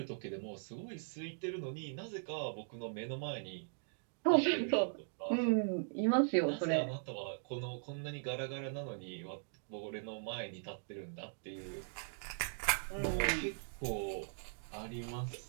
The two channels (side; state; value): left; silent; digital silence